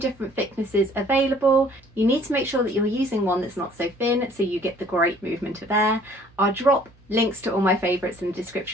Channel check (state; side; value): noise; right; hum, 30 dB below the sound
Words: thicknesses available. You need to make sure that you're using one that's not so thin so you get the great movement of air. I'll drop links to all my favourites in the